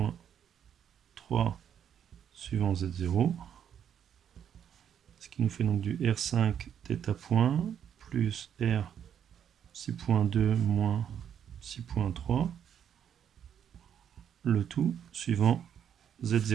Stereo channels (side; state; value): left; quieter; 8.9 dB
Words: suivant Z0, ce qui nous fait donc du R5 θ point plus R psi.2 moins 6.3, le tout suivant